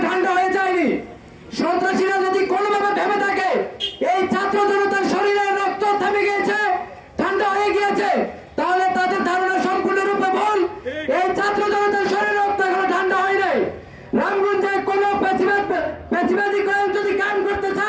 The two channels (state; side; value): identical; both; correlation 1.00